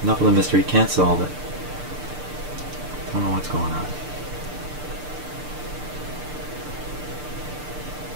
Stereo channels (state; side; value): late; left; 6.7 ms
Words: enough of the mystery. Can't solve it. Don't know what's going on.